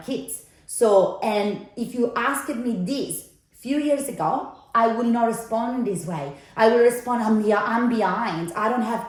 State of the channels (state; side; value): identical; both; correlation 1.00